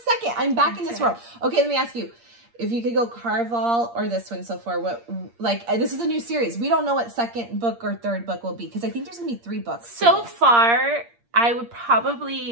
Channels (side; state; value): left; late; 8.6 ms